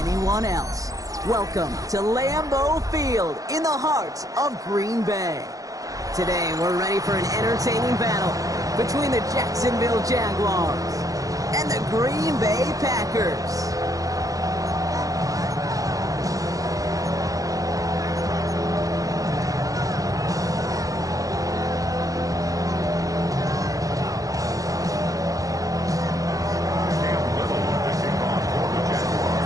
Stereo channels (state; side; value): late; left; 0.17 ms